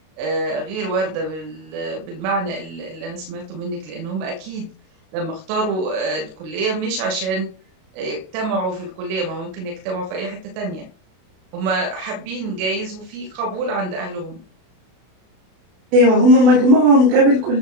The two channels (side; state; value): left; late; 32 ms